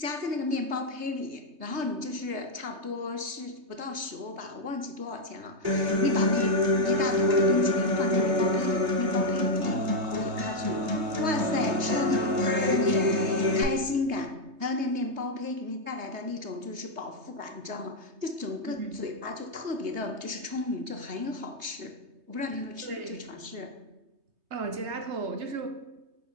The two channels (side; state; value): left; late; 3.2 ms